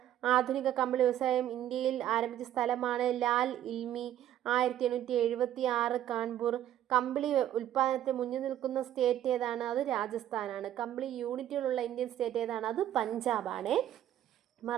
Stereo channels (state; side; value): quieter; left; 11.8 dB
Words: ആധുനിക കമ്പിളി വ്യവസായം ഇന്ത്യയിൽ ആരംഭിച്ച സ്ഥലമാണ് ലാൽ ഇൽമി. 1876 കാൺപൂർ. കമ്പിളി ഉൽപ്പാദനത്തിൽ മുന്നിൽ നിൽക്കുന്ന സ്റ്റേറ്റ് ഏതാണ്? അത് രാജസ്ഥാനാണ്. കമ്പിളി യൂണിറ്റുകളുള്ള ഇന്ത്യൻ സ്റ്റേറ്റ് ഏതാണ്? അത് പഞ്ചാബാണ്.